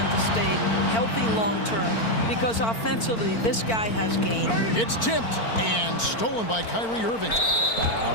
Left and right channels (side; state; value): right; late; 4.4 ms